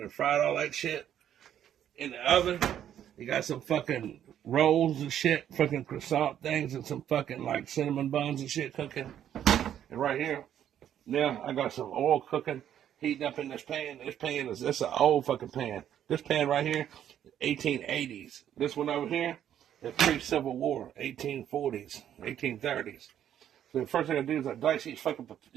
then fried all that shit in the oven. You got some fucking rolls and shit, fucking croissant things, and some fucking like cinnamon buns and shit cooking. And right here, now I got some oil cooking, heating up in this pan. This pan is, this an old fucking pan. This pan right here, 1880s. This one over here, it's pre-Civil War, 1840s, 1830s. So the first thing I do is I dice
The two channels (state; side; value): quieter; left; 10.3 dB